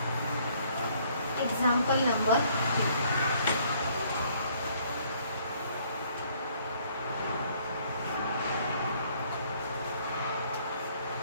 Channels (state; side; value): inverted; both; correlation -0.63